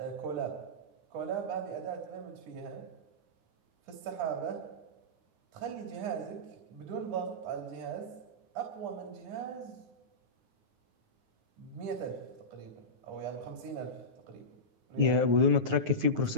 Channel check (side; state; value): left; late; 9.3 ms